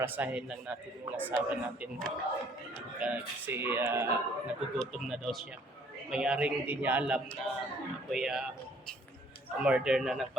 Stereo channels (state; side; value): normal; both; correlation 0.60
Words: lang natin yung asawa natin kasi nagugutom na daw siya. Mayroong hindi niya alam na ako'y umorder na ng